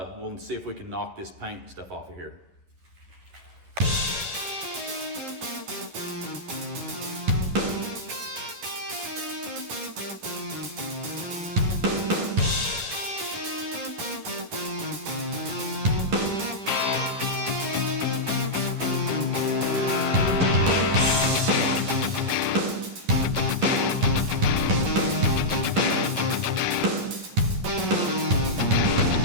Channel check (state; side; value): late; left; 11 ms